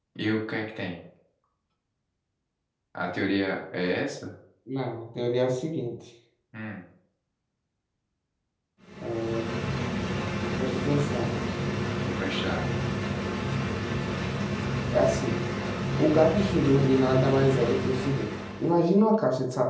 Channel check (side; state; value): both; identical; correlation 1.00